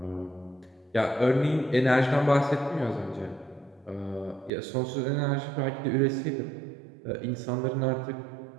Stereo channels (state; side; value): drops out; left; at 4.5 s